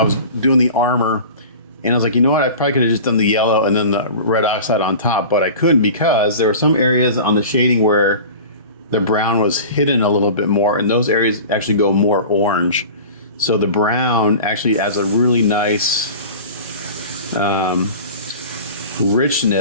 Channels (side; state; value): both; inverted; correlation -0.37